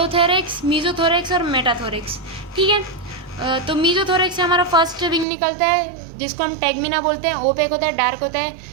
मीजोथोरेक्स और मेटाथोरेक्स, ठीक है। तो मीजोथोरेक्स से हमारा फर्स्ट विंग निकलता है जिसको हम टैगमिना बोलते हैं, ओपेक होता है, डार्क होता है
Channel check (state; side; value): drops out; left; at 5.2 s